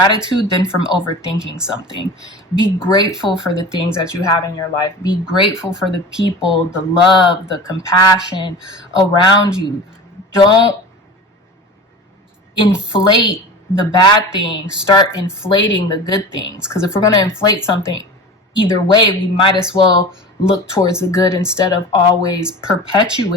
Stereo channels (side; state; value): both; normal; correlation 0.35